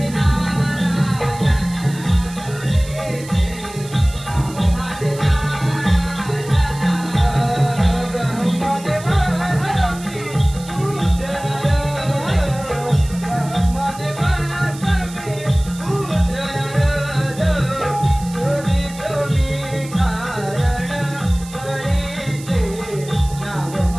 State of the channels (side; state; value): right; noise; hiss, 17 dB below the sound